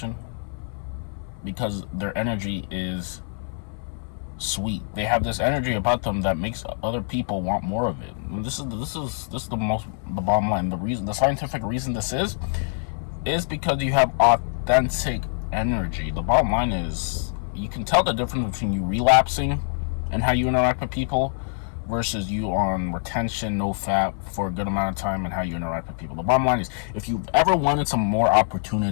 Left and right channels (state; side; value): silent; right; 62 dB below the other